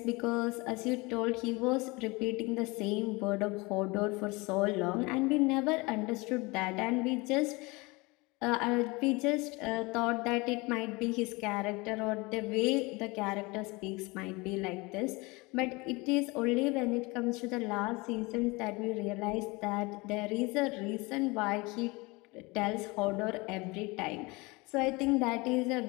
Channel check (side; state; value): right; quieter; 24.9 dB